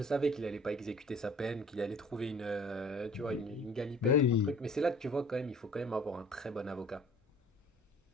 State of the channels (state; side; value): normal; both; correlation 0.50